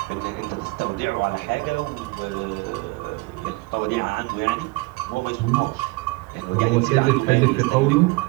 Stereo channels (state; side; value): quieter; left; 24.3 dB